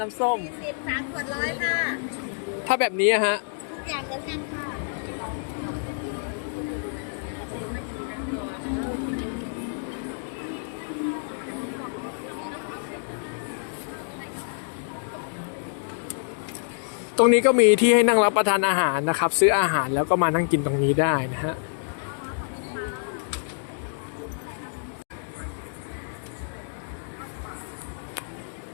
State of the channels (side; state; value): right; silent; digital silence